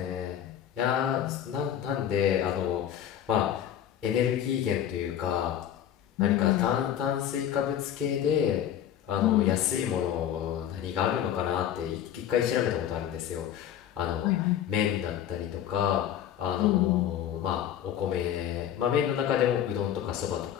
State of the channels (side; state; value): right; quieter; 10.3 dB